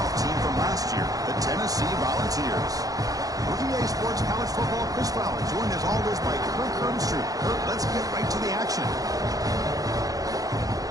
team from last year, the Tennessee Volunteers. EA Sports College Football Chris Fowler, joined as always by Kirk Hermstreet. Kirk, let's get right to the action.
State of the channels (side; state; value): left; late; 0.17 ms